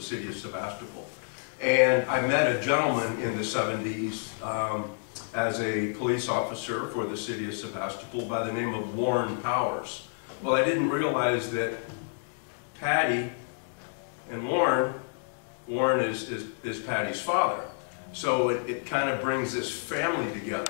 city of Sebastopol. And I met a gentleman in the 70s as a police officer for the city of Sebastopol by the name of Warren Powers. Well, I didn't realize that Patty and Warren is Patty's father. So it kind of brings this family together.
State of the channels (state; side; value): silent; right; digital silence